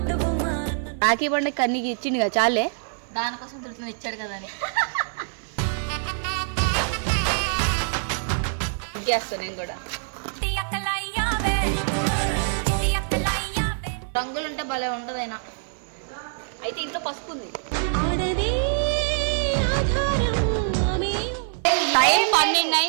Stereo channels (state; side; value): silent; left; 55 dB below the other